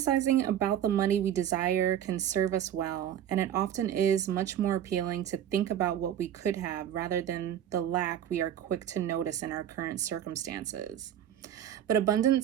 about the money we desire can serve us well, and it often is much more appealing to think about what we could have rather than the lack we are quick to notice in our current circumstances. But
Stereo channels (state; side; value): quieter; left; 10.3 dB